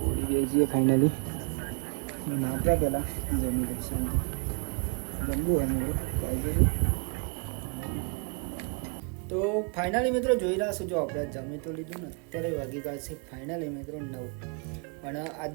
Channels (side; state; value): left; quieter; 37.6 dB